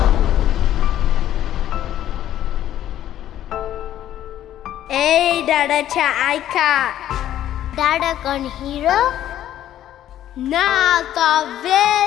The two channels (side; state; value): right; quieter; 12.0 dB